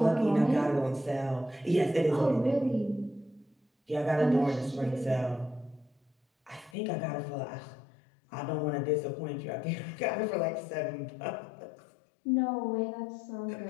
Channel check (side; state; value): right; drops out; at 6.8 s